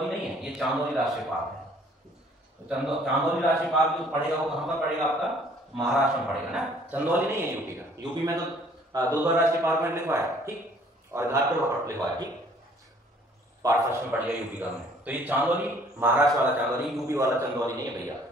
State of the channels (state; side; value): normal; both; correlation 0.58